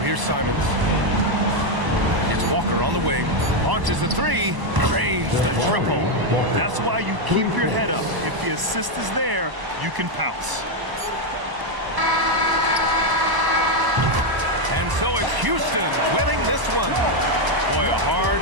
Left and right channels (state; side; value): late; left; 1.0 ms